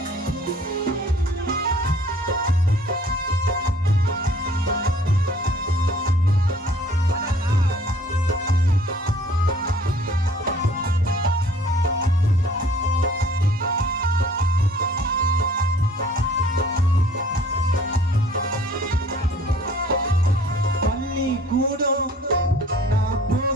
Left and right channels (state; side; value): normal; both; correlation 0.54